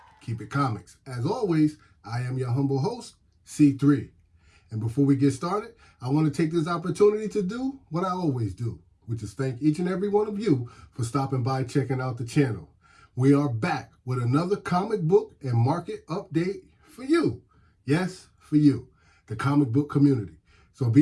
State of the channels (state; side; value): identical; both; correlation 1.00